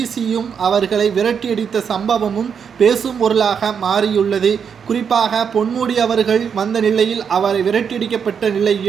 அவர்களை விரட்டியடித்த சம்பவமும் பேசும் பொருளாக மாறியுள்ளது. குறிப்பாக பொன்முடி அவர்கள் வந்த நிலையில் அவரை விரட்டியடிக்கப்பட்ட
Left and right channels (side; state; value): left; quieter; 7.0 dB